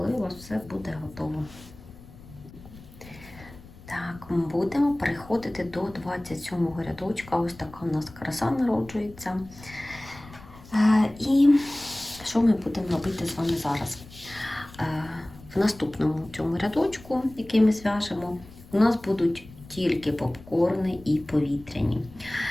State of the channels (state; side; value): noise; left; rumble, 20 dB below the sound